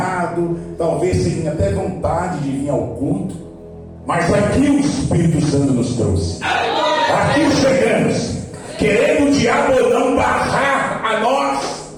talvez sem até vontade de vir ao culto, mas aqui o Espírito Santo nos trouxe. Aqui chegamos, querendo o diabo não barrar a nós,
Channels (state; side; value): identical; both; correlation 1.00